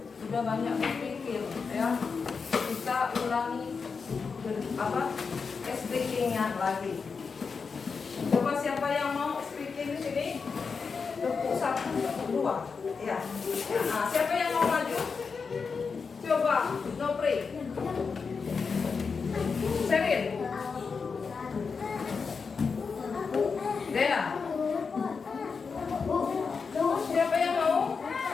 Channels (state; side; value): quieter; right; 5.2 dB